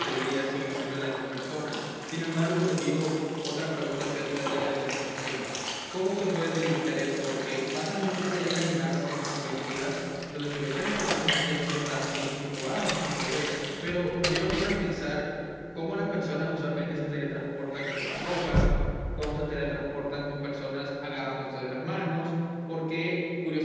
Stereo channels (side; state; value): both; identical; correlation 1.00